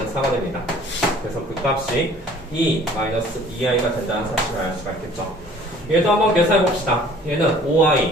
4가 됩니다. 그래서 그 값이 2 마이너스 2i가 된다는 사실을 알 수가 있겠죠. 얘도 한번 계산해 봅시다. 얘는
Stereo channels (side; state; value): both; normal; correlation 0.52